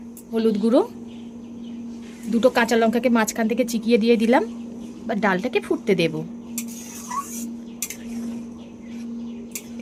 হলুদ গুঁড়ো। 2টো কাঁচা লঙ্কাকে মাঝখান থেকে চিকিয়ে দিয়ে দিলাম। বা ডালটাকে ফুটতে দেব।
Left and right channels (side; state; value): both; identical; correlation 1.00